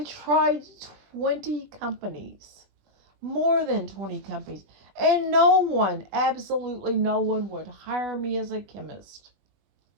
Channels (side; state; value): left; late; 20 ms